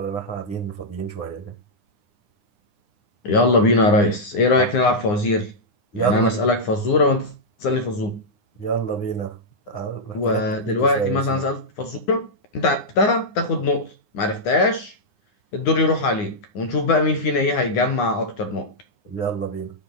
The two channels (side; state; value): right; late; 9.8 ms